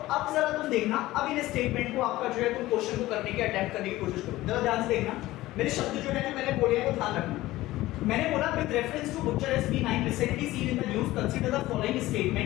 जरा तुम देखना, अब इन स्टेटमेंट को आपका जो है तुम क्वेश्चन को करने की अटेम्प्ट करने की कोशिश करो, जरा ध्यान से देखना। मेरे शब्द जो है जो मैंने बोले हैं वो ध्यान रखना। मैंने बोला with reference to Bucharest B9 recently seen in the news, consider the following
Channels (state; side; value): quieter; right; 17.1 dB